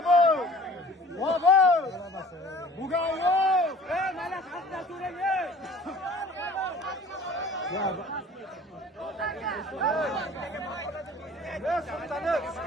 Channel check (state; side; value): normal; both; correlation 0.48